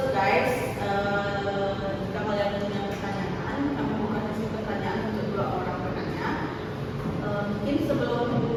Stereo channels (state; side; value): identical; both; correlation 1.00